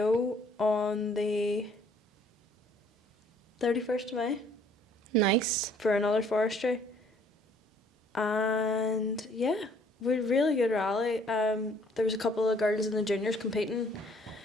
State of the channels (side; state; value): both; normal; correlation 0.60